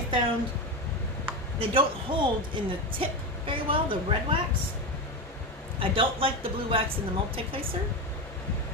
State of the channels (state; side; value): normal; both; correlation 0.17